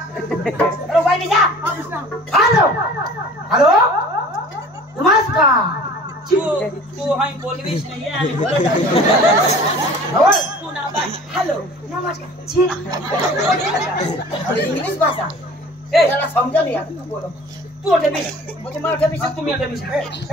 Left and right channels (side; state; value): both; normal; correlation 0.45